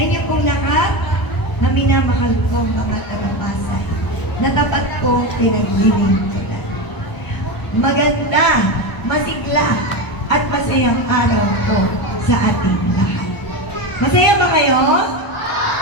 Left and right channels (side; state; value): right; late; 1.0 ms